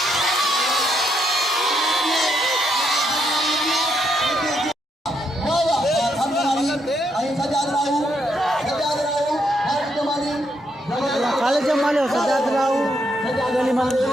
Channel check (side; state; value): both; normal; correlation 0.77